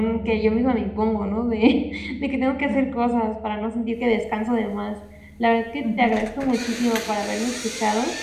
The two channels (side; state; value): both; identical; correlation 1.00